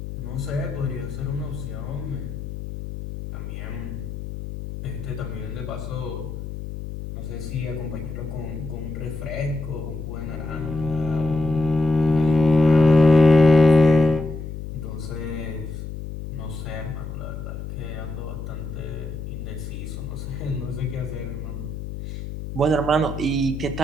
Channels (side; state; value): left; noise; hum, 8 dB below the sound